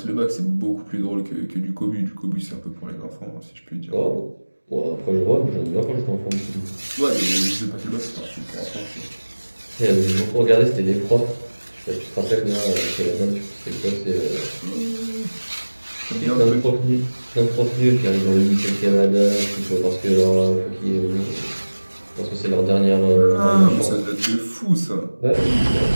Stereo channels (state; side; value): inverted; both; correlation -1.00